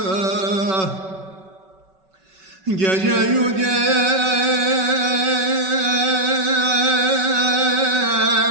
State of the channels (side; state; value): left; late; 5.3 ms